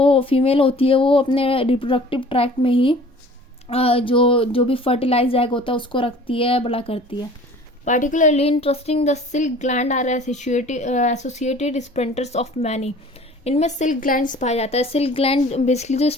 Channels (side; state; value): both; normal; correlation 0.47